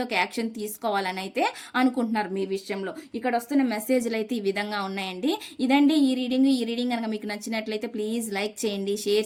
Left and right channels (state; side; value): identical; both; correlation 1.00